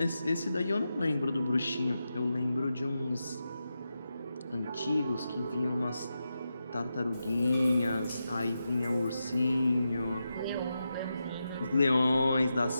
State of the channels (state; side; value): inverted; both; correlation -0.88